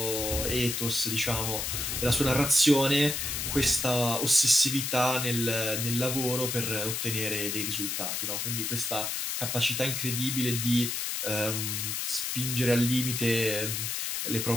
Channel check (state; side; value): noise; left; hiss, 2 dB below the sound